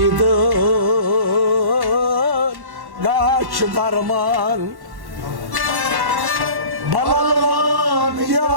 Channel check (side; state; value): left; late; 1.1 ms